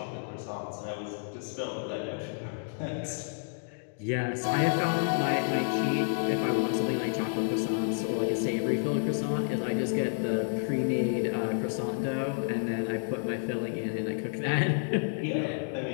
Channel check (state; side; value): silent; right; digital silence